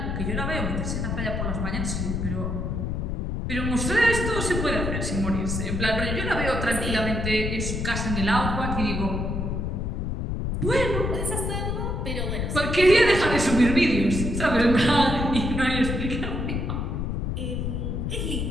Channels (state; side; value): noise; left; rumble, 1 dB below the sound